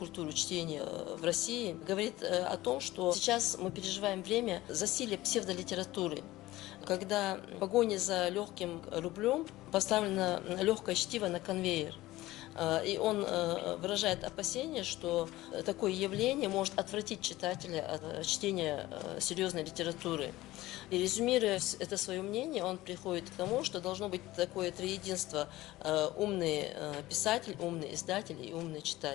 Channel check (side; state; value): right; quieter; 17.3 dB